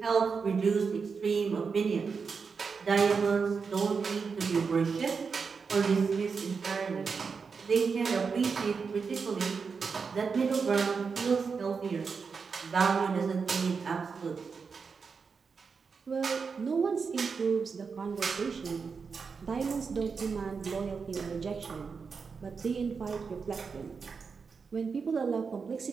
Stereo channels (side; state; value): left; quieter; 5.4 dB